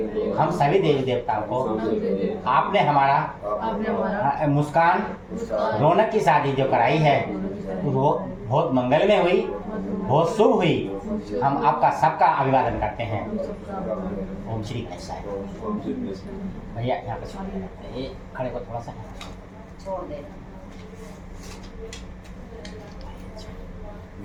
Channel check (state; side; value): identical; both; correlation 1.00